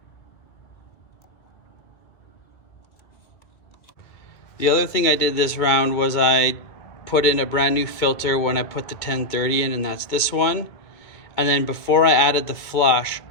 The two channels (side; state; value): right; late; 2.3 ms